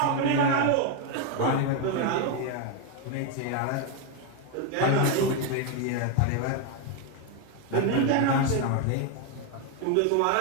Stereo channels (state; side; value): different; both; correlation 0.01